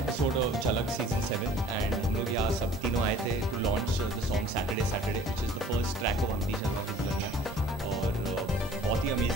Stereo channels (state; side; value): normal; both; correlation 0.50